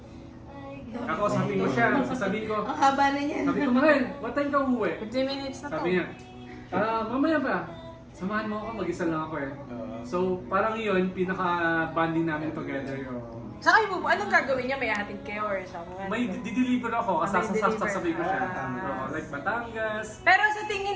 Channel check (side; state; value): both; identical; correlation 1.00